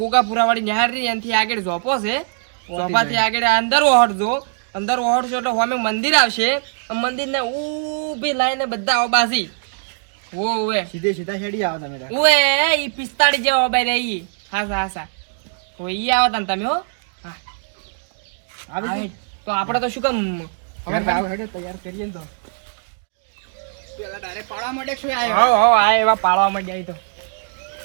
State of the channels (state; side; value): silent; left; digital silence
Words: વાળી નિહાળ રી એનથી આગળ ઝોપો છે. ઝોપાથી આગળ અંદર ઓહડજો. અંદર ઓહડજો એટલે સામે મંદિર આવશે. મંદિરને ઊભી લાઈને બધા ઓબાસી ઓવે સીધે સીધા હેડી આવો તમે તાર. ઓએ ઈ 45 જેવો ઓબાઈ રહી. હાસા ઓય ઈ આવો તને તમે હો. હા આવી આવે. તો આપણે તો શું કામ હવે આવો હેડે તૈયાર કરીએ ને તો પેલા ડાયરેક્ટ પાડવા માટે શું આવ્યો? હો આ એવા પાળવા માંડ્યા ઈ તો.